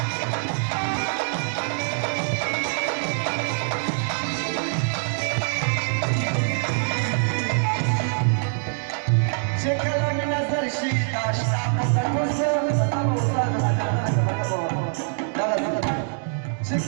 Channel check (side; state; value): left; silent; digital silence